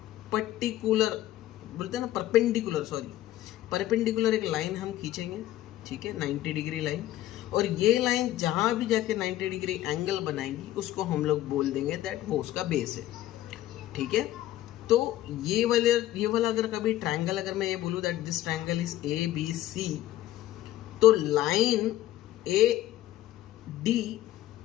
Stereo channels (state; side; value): quieter; right; 14.2 dB